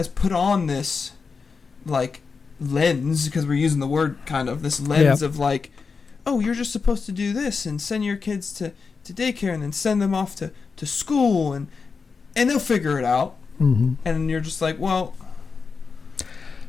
put on this, like, lens, because we're using the word kind of, this lens of like, oh, you're just supposed to do this and send your kids to to daycare and then send them off to school and they'll figure it out. Mm-hmm. And you're just like, well,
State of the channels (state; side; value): quieter; right; 5.0 dB